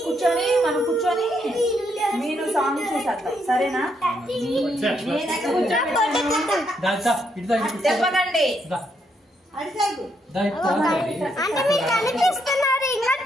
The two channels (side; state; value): both; normal; correlation 0.76